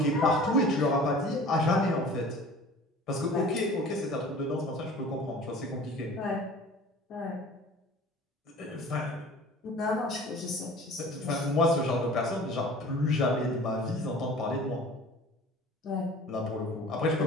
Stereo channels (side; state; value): both; normal; correlation 0.44